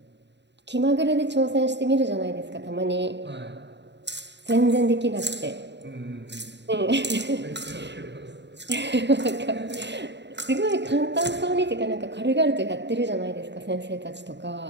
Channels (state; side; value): late; left; 0.51 ms